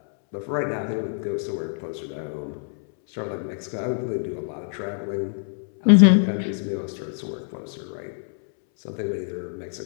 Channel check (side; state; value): right; silent; 62 dB below the other